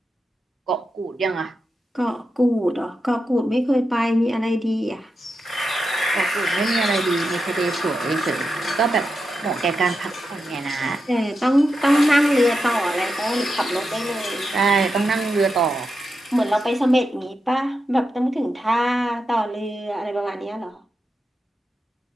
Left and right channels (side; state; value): both; normal; correlation 0.88